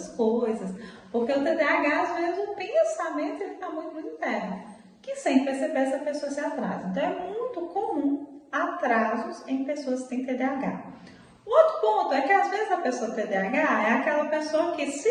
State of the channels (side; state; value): both; identical; correlation 1.00